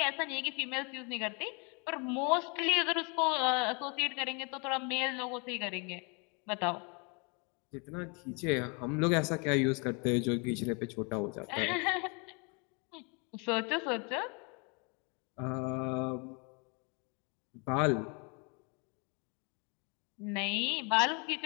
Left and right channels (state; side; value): quieter; right; 33.3 dB